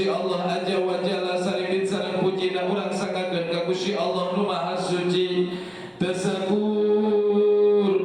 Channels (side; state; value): both; identical; correlation 1.00